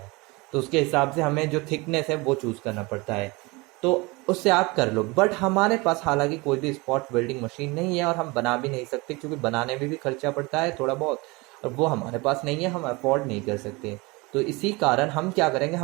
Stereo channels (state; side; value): quieter; left; 24.9 dB